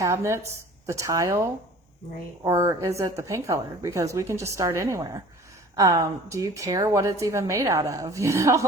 the tile? Right. Or is it the paint color? Because we can just start anywhere. Do you care what it's even made out of?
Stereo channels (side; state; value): both; normal; correlation 0.46